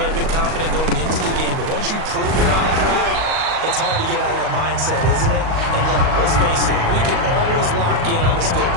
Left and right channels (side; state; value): left; late; 38 ms